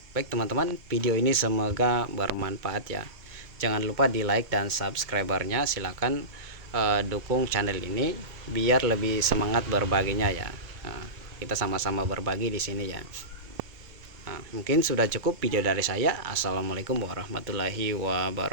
Baik teman-teman, video ini semoga bermanfaat ya. Jangan lupa di like dan subscribernya, silahkan dukung channel ini biar lebih semangat berbaginya ya. Nah, kita sama-sama berbagi di sini ya. Nah, mungkin sudah cukup video dari saya. Assalamualaikum warahmatullahi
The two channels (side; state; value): left; late; 2.2 ms